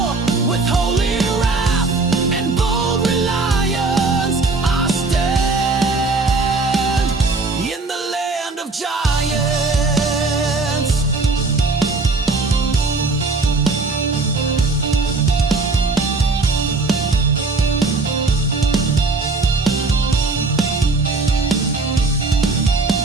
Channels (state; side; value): quieter; left; 3.7 dB